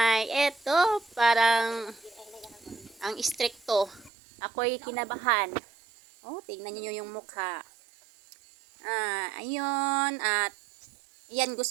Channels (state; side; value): drops out; left; at 4.1 s